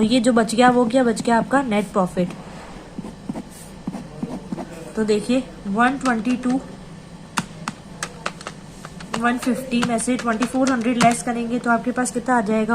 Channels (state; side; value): identical; both; correlation 1.00